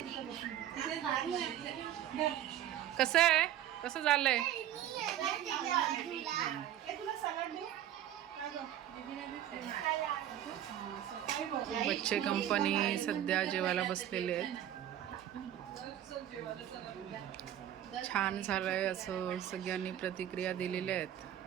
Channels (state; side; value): quieter; left; 11.5 dB